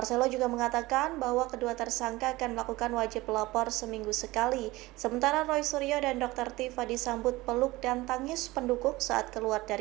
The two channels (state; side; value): quieter; left; 20.0 dB